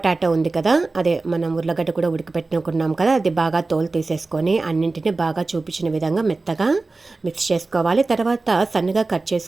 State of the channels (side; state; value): left; quieter; 3.5 dB